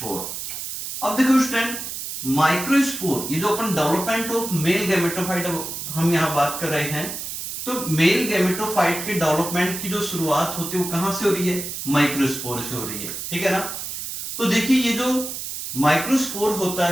अब देखो स्टूडेंट, माइक्रोस्पोर ये जो अपन डेवलपमेंट ऑफ मेल गैमेटोफाइट हम यहां बात कर रहे हैं, तो मेल गैमेटोफाइट के डेवलपमेंट की जो शुरुआत होती है वो कहां से हो रही है, माइक्रोस्पोर से हो रही है, ठीक है ना। तो देखिए ये जो माइक्रोस्पोर होता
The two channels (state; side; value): noise; right; hiss, 6 dB below the sound